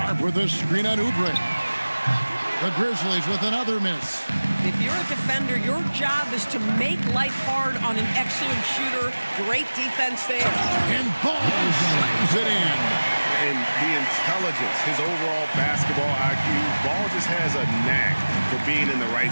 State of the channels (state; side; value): inverted; both; correlation -1.00